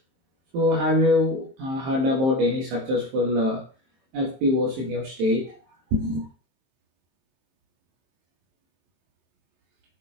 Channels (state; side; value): late; left; 23 ms